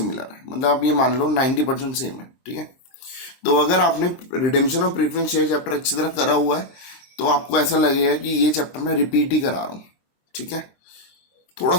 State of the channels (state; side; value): late; right; 23 ms